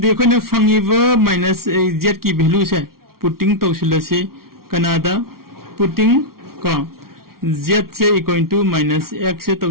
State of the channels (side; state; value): left; late; 0.93 ms